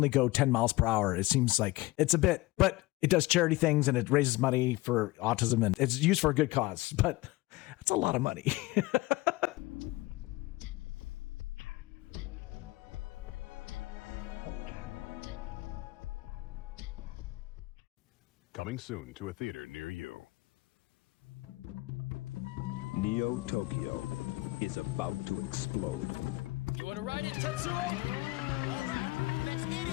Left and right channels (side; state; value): right; quieter; 20.5 dB